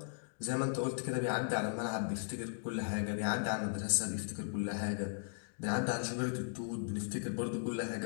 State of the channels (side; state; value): right; silent; digital silence